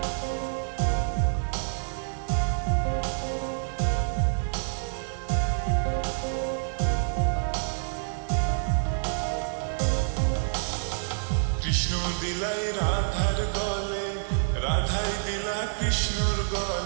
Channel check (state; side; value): silent; left; digital silence